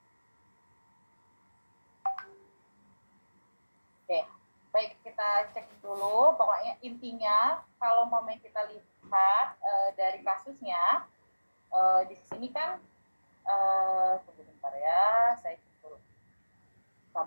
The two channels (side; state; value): both; inverted; correlation -1.00